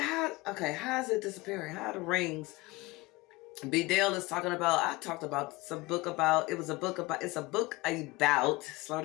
is it disappearing? How are the rings? B. Dale is talking about, I talked about some book about, it's a book about, slow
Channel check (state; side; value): quieter; right; 21.4 dB